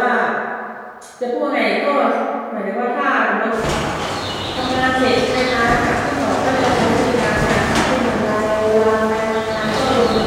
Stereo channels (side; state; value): both; identical; correlation 1.00